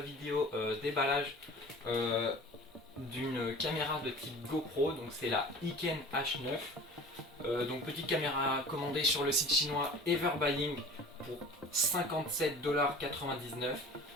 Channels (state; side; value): normal; both; correlation 0.42